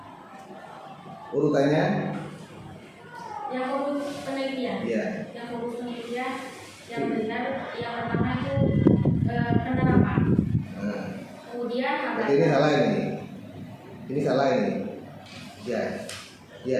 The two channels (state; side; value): identical; both; correlation 1.00